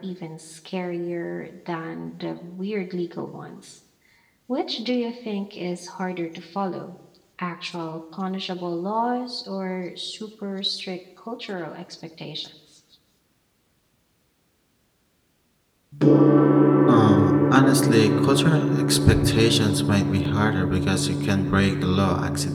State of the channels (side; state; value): both; identical; correlation 1.00